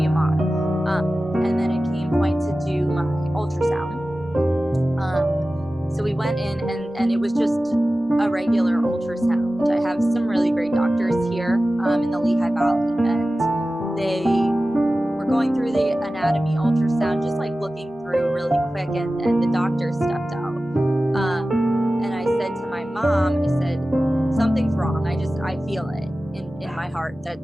a mom. And then it came point to do my ultrasound. So we went in, and it was just a regular ultrasound. I have some really great doctors here in the Lehigh Valley, and they were going through the anatomy ultrasound, just looking through really quick, and the doctor stepped out. And I said to my mom, I said, something's wrong. I feel it in my heart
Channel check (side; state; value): both; normal; correlation 0.95